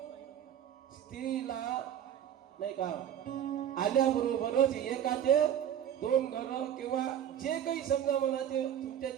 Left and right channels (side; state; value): left; quieter; 10.1 dB